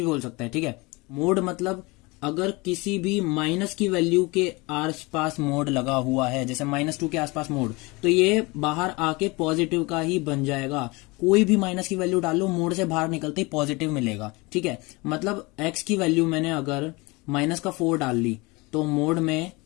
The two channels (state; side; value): quieter; right; 25.0 dB